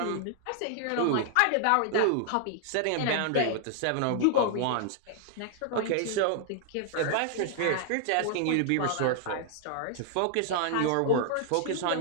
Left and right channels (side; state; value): both; different; correlation 0.00